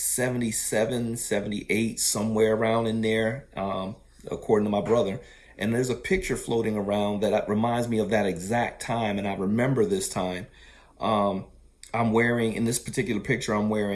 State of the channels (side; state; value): both; identical; correlation 1.00